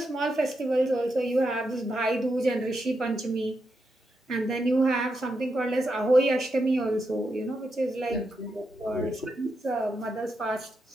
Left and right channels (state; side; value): normal; both; correlation 0.84